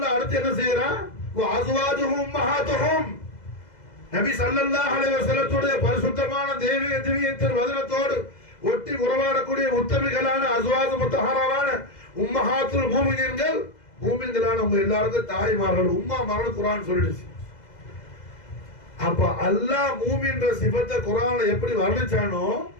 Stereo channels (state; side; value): late; right; 2.0 ms